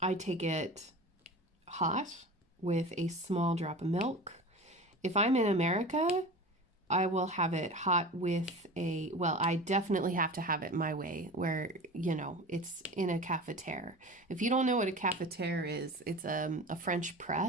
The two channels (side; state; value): both; normal; correlation 0.34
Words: take it hot with a small drop of milk. If I'm in America, I will have it hot with I definitely have to have it my way where, it's in a cafetiere. If you don't know what a cafetiere is, it's a French